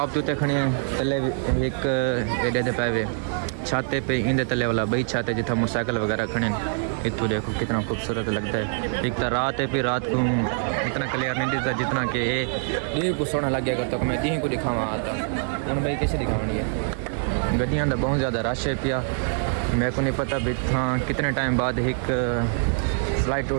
उत्ते खड़ी तले एक एडे दे पावे छाते पे इंदे तले वाला बई छाते जिथा मोटरसाइकिल वगैरह खड़े इतों देखो कितना खूबसूरत लगता है एक तो रात है फिर रात को इतना क्लियर नहीं दिखता जितना कि ये को सोना लग गया करता तो मैं दी को दिखावा आता हूँ भाई कैसे दिखावनी है गड्डियाँ का बहुत ज़्यादा रश है पिया मेरे को नहीं पता भी हाँ कितने टाइम बाद एक फ्लाइट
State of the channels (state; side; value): silent; left; digital silence